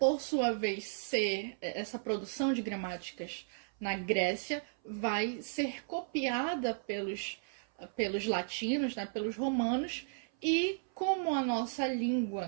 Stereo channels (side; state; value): left; silent; 55 dB below the other